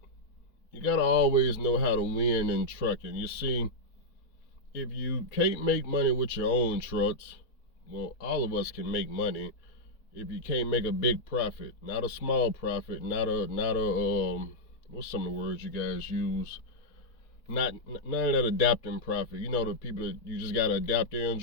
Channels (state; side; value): late; right; 3.9 ms